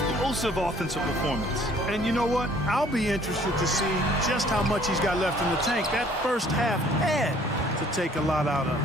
offensive performance. And you know what? I'll be interested to see just how much he's got left in the tank. That first half had to take a lot out of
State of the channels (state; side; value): normal; both; correlation 0.58